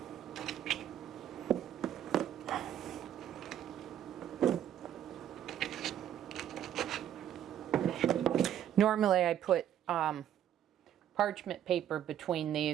Normally I put parchment paper between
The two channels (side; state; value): left; quieter; 10.5 dB